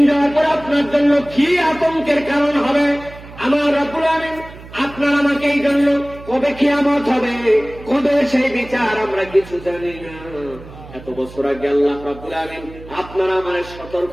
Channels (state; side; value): noise; right; hum, 17 dB below the sound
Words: যাওয়ার পর আপনার জন্য কি আতঙ্কের কারণ হবে। আমার রাব্বুল আলামিন আপনার আমাকে এই জন্য কবে কিয়ামত হবে, কবে সেই বিচার আমরা কিছু জানি না। এত বছর আগে আল্লাহ রাব্বুল আলামিন আপনারা আমারে সতর্ক